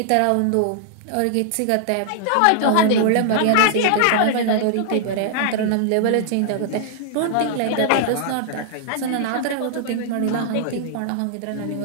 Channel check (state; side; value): different; both; correlation -0.01